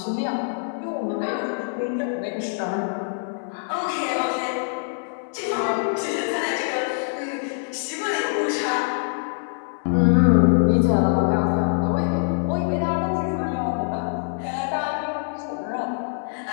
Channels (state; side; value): silent; right; digital silence